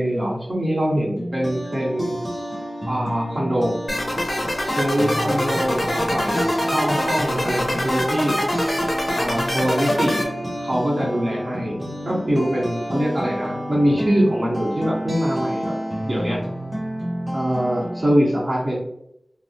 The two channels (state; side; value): normal; both; correlation 0.97